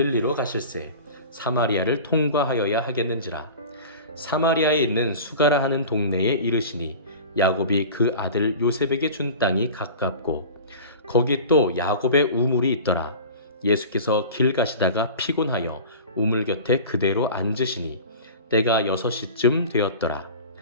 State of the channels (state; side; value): inverted; both; correlation -0.37